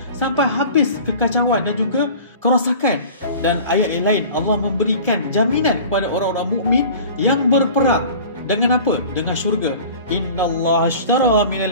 sampai habis kekacauan dan juga kerosakan. Dan ayat yang lain, Allah memberikan jaminan kepada orang-orang mukmin yang berperang dengan apa? Dengan syurga. Innallaha ashtara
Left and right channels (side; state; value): both; inverted; correlation -0.42